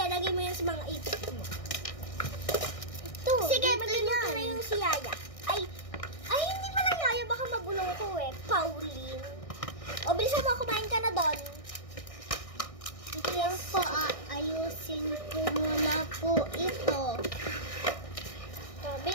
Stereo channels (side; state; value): right; late; 1.6 ms